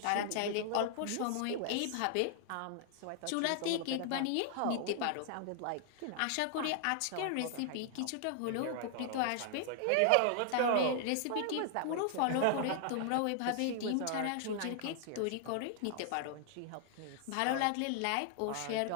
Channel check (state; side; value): different; both; correlation 0.00